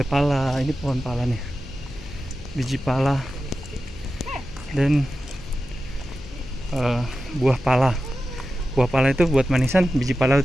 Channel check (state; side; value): noise; left; hum, 17 dB below the sound